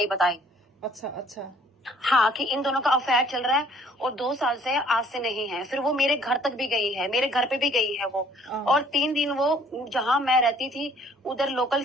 बताई। अच्छा अच्छा। हाँ, कि इन दोनों का अफेयर चल रहा है और 2 साल से, आज से नहीं है। फिर वो मेरे घर तक भी गई है, मेरे घर पे भी गई है वो। और 3 दिन वो जहाँ मैं रहती थी उधर लोकल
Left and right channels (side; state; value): both; normal; correlation 0.58